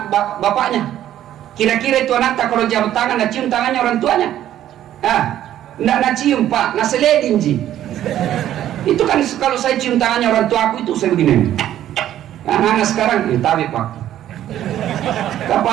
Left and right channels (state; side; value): quieter; left; 12.0 dB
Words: bapaknya. Kira-kira itu anak tak kalau jam tangan, nah cium tangannya orang tuanya. Nak cium, Pak, nah seledin ji. Itu kan kalau saya cium tangannya orang tua aku itu saya begini. Anak-anak sekarang tabi, Pak,